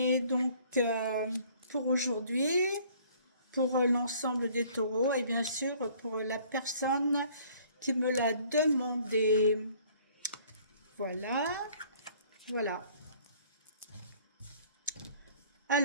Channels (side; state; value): both; inverted; correlation -0.56